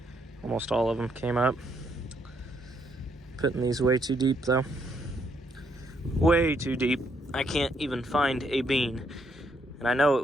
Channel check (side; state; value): both; normal; correlation 0.73